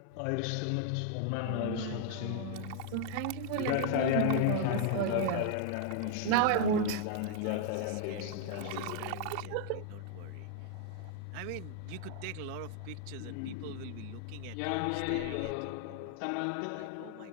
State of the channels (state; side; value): different; both; correlation 0.00